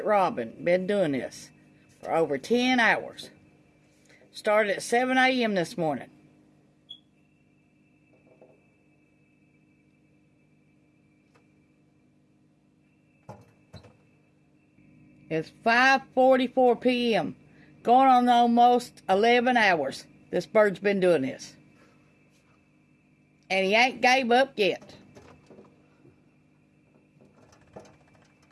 robin been doing this for over 10 hours. Started at 7 a.m. this morning. It's 5:44 p.m. Going on almost 11 hours. This bird's been doing this. And he ain't gave up yet.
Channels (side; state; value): both; identical; correlation 1.00